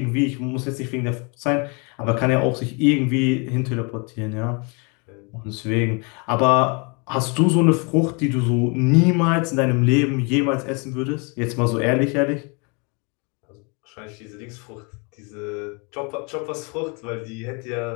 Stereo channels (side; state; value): right; quieter; 32.7 dB